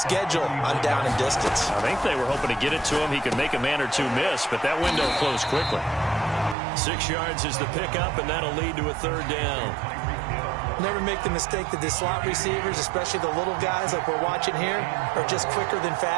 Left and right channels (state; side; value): drops out; left; at 6.6 s